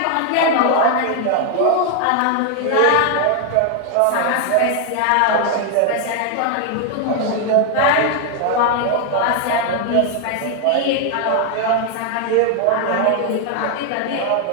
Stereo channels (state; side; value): different; both; correlation 0.00